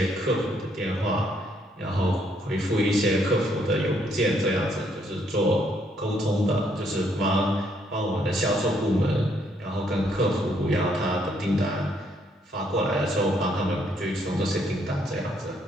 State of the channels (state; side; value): normal; both; correlation 0.70